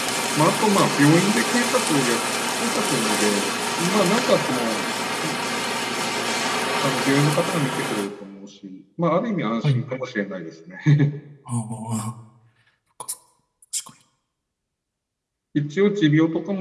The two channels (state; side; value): identical; both; correlation 1.00